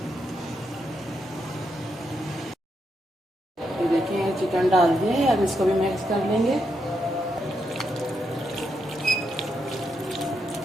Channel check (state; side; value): normal; both; correlation 0.82